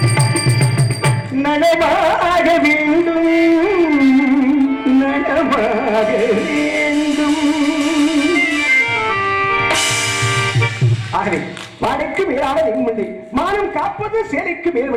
வாழைக்கு மேலான நின்மில்லை, மானம் காப்பது சேலைக்கு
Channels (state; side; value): identical; both; correlation 1.00